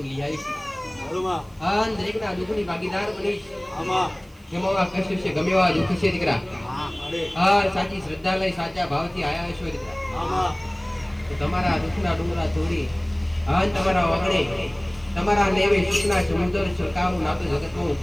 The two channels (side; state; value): right; noise; hiss, 30 dB below the sound